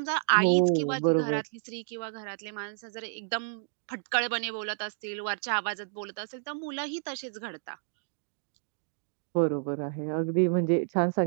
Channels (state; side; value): silent; left; digital silence